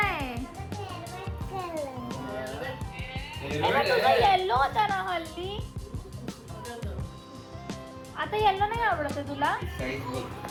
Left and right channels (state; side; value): identical; both; correlation 1.00